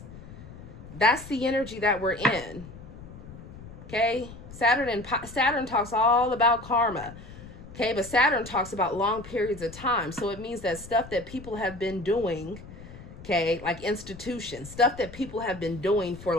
That's the energy that we're in. Okay? Saturn talks all about karma. Okay? But Saturn talks about long periods of time. So it means that stuff that people have been doing, okay, like institutions, stuff that people have been doing for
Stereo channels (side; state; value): left; noise; rumble, 16 dB below the sound